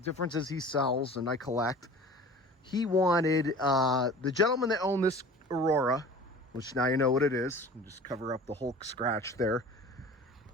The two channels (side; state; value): both; normal; correlation 0.41